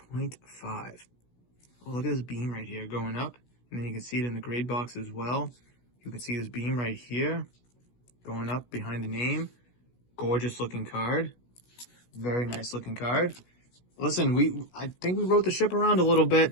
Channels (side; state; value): right; late; 16 ms